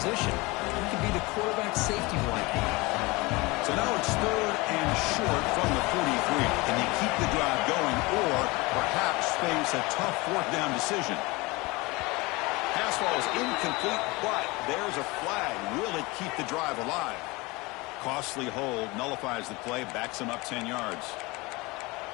He can be the quarterback safety blanket. So now it's 3rd and short from the 43. Can you keep the drive going or perhaps face a tough 4th down decision. Pass ball is incomplete, but there's a flag. Will it keep the drive alive? Costly hold nullifies the play, backs him up 10 yards.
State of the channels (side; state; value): right; quieter; 23.8 dB